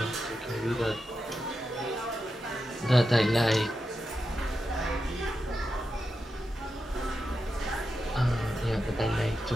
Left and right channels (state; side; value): normal; both; correlation 0.88